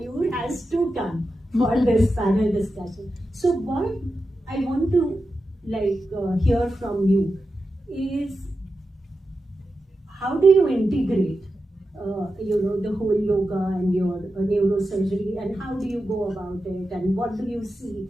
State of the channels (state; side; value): normal; both; correlation 0.90